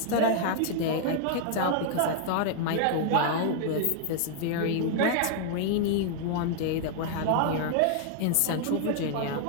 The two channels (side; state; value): both; different; correlation 0.00